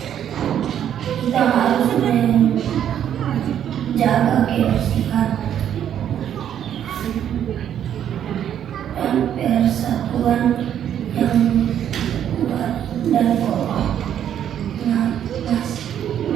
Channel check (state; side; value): quieter; left; 9.8 dB